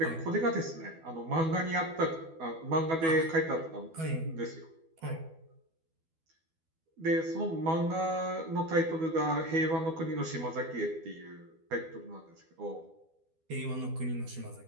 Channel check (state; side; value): late; left; 12 ms